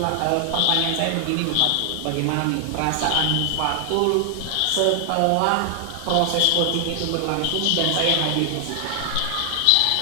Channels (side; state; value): both; different; correlation 0.00